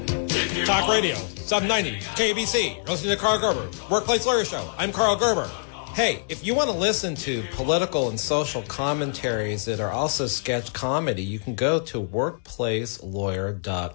Talk Radio, 790 KABC. You're listening to Karl Gerber, Workplace Lawyer Show. I'm Karl Gerber. Hey, if you want to listen to political and social commentaries that are also sketch comedy, you can go to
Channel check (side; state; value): right; silent; 62 dB below the other